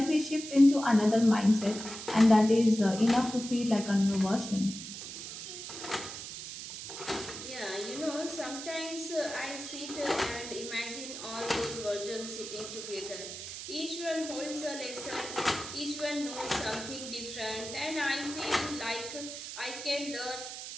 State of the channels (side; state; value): right; noise; hiss, 9 dB below the sound